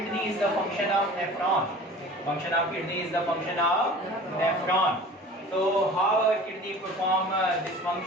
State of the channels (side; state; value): both; normal; correlation 0.42